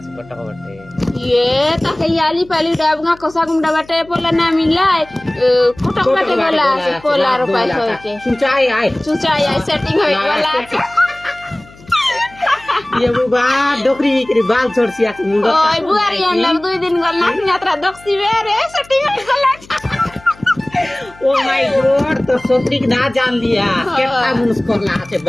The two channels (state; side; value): noise; left; hum, 24 dB below the sound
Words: से पटका बटे ये ताके याली पाली डाबगा कोसा गुंडा बाटे पोला ना मिलाय कोटक बाटे गला से पोला रुपए होय के सुचाई आए चुचा या सेटिंग होय वाला ये बुबा डोकरी के बाल छोड़सी আছে मुंडो ओय बुआरी अंदर 2 दिन गल ना यात्रा दक्सी रे सेटिंग होय गला ओ माय गॉड तो सोत्री ना जान लिया केतना मुनस करला আছে